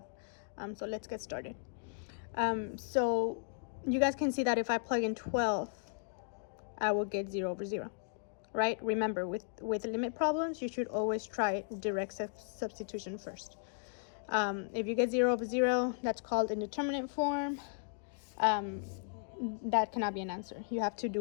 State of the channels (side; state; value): right; silent; digital silence